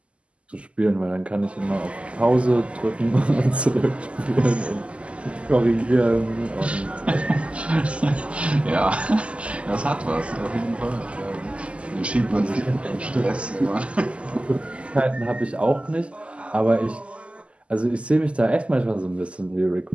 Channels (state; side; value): late; left; 0.057 ms